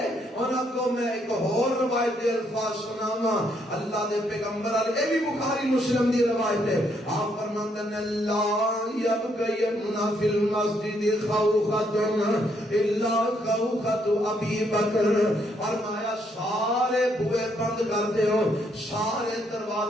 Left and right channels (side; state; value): both; normal; correlation 0.73